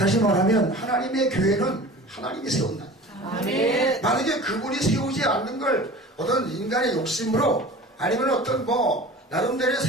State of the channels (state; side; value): normal; both; correlation 0.39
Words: 말하면 하나님의 교회는 하나님이 세운다. 만약에 그분이 세우지 않는 걸 어떤 인간의 욕심으로 아니면 어떤 나름대로의